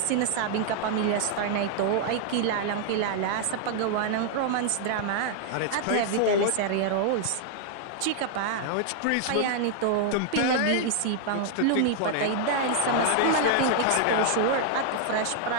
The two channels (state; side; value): different; both; correlation 0.00